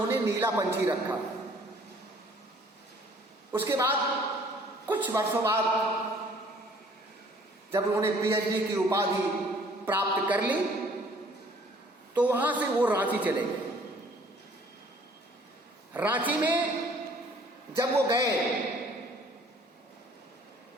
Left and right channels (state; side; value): normal; both; correlation 0.57